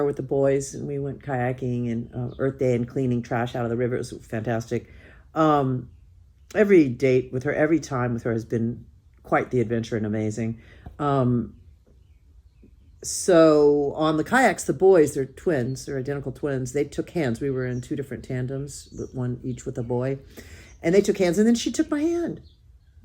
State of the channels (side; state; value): both; identical; correlation 1.00